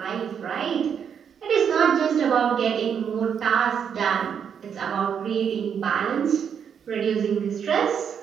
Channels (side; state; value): left; quieter; 7.6 dB